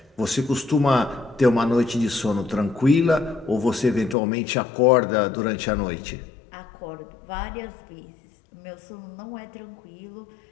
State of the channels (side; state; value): right; drops out; at 4.2 s